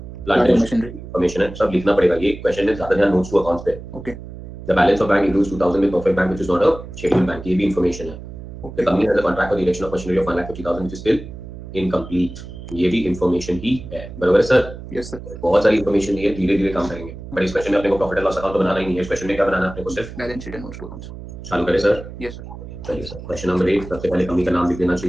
plant and machinery. Information है, सब लिखना पड़ेगा। ये क्वेश्चन में ज्यादा ध्यान नोट्स टू अकाउंट्स पे। Okay. The balance of bank includes 2000 with perfect bank which is not a scheduled bank। ये भी इंफॉर्मेशन है। The company has a contract for the erection of machinery of 1,50,000 which is still incomplete। ये भी information ही है। बराबर है sir? Yes sir. बहुत सारी इंफॉर्मेशन दी है, धीरे धीरे काम करेंगे। बट इस क्वेश्चन में अपने को प्रॉफिट एंड लॉस अकाउंट तो बनाना ही नहीं है। इस क्वेश्चन में क्या बनाना है अपने को? सिर्फ balance sheet and notes to accounts. चालू करें सर? Yes sir. चलिए सर, क्वेश्चन नंबर 8 सबसे पहले कंपनी का नाम लिख देना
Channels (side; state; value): right; noise; hum, 13 dB below the sound